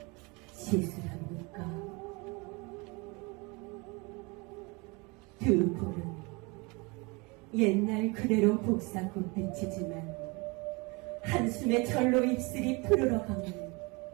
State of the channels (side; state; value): left; quieter; 27.8 dB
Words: 시술합니까? 두 볼은 옛날 그대로 복사꽃 빛이지만 한숨에 절로 입술이 푸르러가면